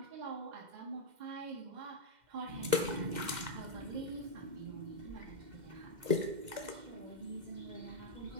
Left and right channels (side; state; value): left; late; 2.1 ms